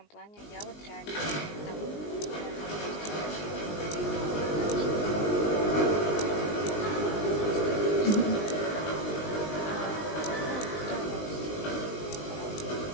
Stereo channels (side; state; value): right; late; 19 ms